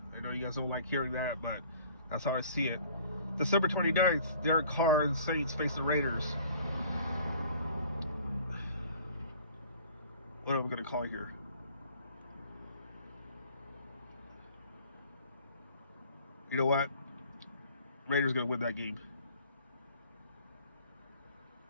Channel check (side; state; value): both; inverted; correlation -0.52